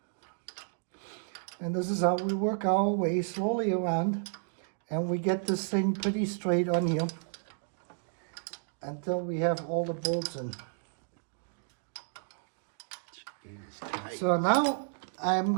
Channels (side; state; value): left; silent; digital silence